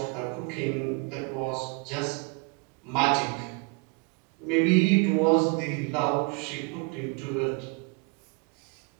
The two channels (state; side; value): quieter; left; 30.8 dB